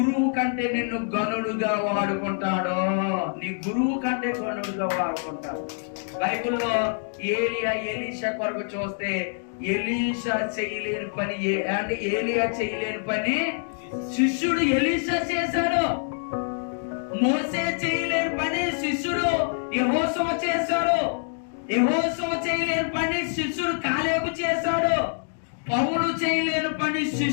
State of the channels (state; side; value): silent; right; 61 dB below the other